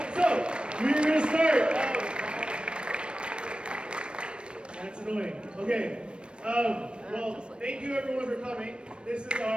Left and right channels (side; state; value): left; late; 0.056 ms